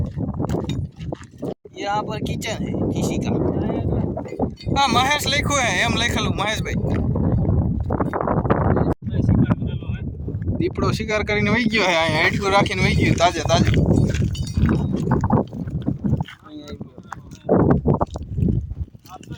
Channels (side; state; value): both; identical; correlation 1.00